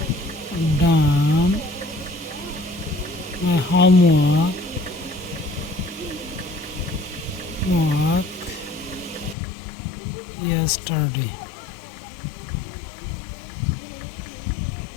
done my homework yesterday.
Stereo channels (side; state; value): right; drops out; at 9.3 s